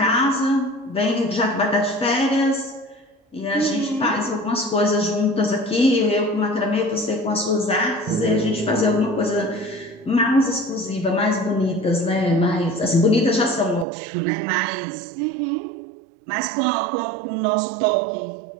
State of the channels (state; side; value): drops out; left; at 13.9 s